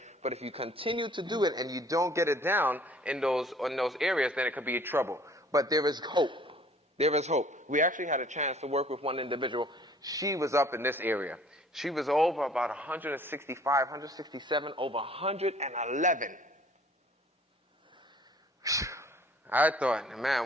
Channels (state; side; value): normal; both; correlation 0.55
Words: But if you continue to do it and you don't get it down in those areas, then it could be trouble. But there is hope. There is hope. We actually had a chance to work with one individual. She was up in this area. She was over about 165, 167, over 111. I thought,